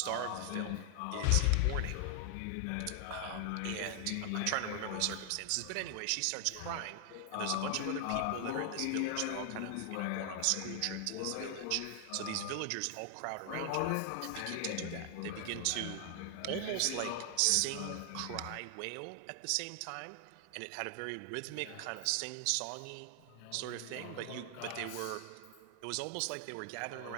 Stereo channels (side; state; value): both; different; correlation 0.00